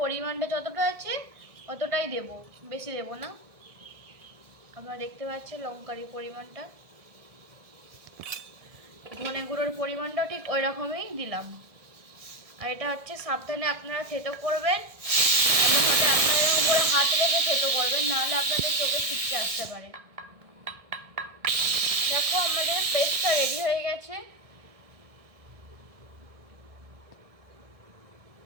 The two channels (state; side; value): late; left; 1.6 ms